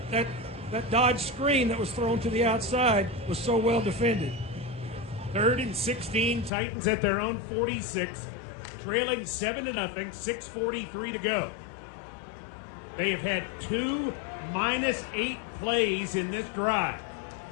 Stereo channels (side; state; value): right; drops out; at 6.5 s